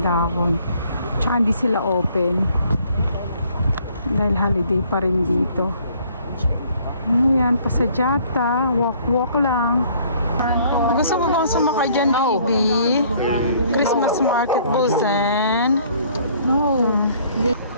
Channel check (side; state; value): both; inverted; correlation -0.60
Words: dahon. Tsaka hindi sila open. Dahil holiday pa rin dito. Ayan, pasadyata. Walk lang. Gusto mo bang sumakay dyan, baby? Christmas market Busan.